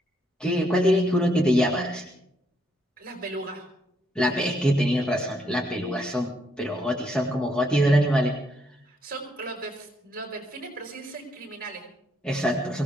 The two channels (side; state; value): both; normal; correlation 0.73